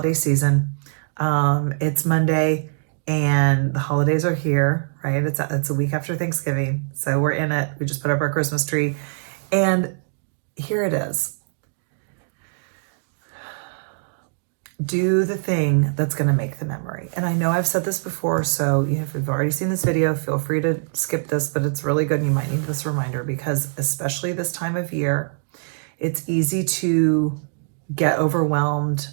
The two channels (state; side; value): silent; left; digital silence